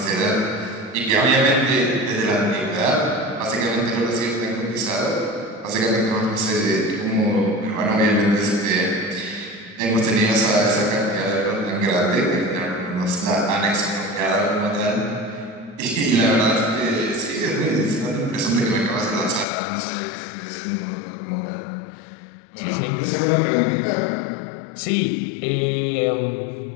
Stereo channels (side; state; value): right; drops out; at 19.5 s